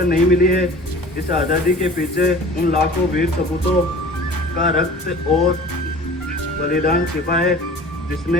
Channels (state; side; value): normal; both; correlation 0.43